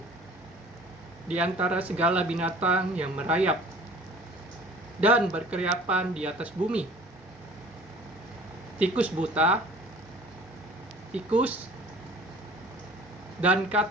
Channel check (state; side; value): normal; both; correlation 0.47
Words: di antara segala binatang yang merayap dan berkeriapan di atas bumi: tikus buta, tikus, dan